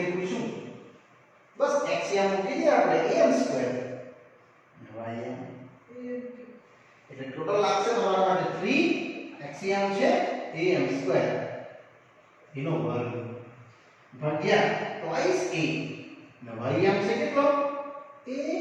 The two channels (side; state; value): both; identical; correlation 1.00